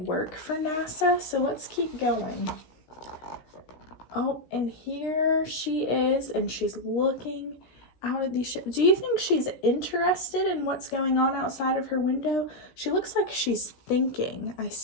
for NASA. So let's keep going. Oh, and here she is, and she's looking out at these ships. Do you think she's interested in what's going on outside of her window? She looks like she's thinking. I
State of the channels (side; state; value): right; late; 16 ms